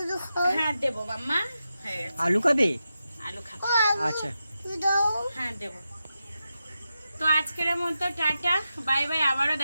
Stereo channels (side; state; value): both; inverted; correlation -0.89